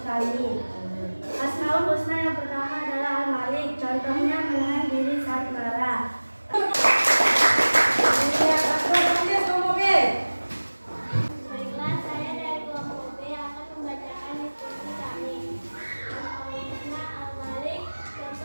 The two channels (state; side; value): inverted; both; correlation -1.00